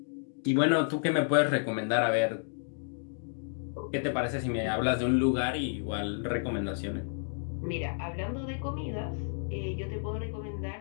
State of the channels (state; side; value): silent; right; digital silence